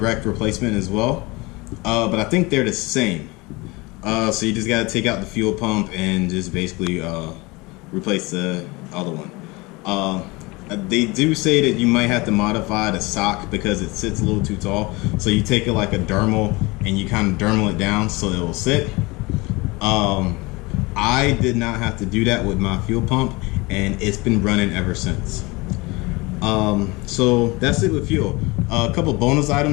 replacement as well. But I think they're the same. So you just gotta take out the fuel pump and just basically replace the other one. They do say that you might have to modify the sock because it sits a little too tall. So you take it like a dermal and you kind of dermal it down so it will sit. I did not have to do that with my fuel pump, and it's been running ever since. So that's it with fuel. A couple bonus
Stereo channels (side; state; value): right; quieter; 24.2 dB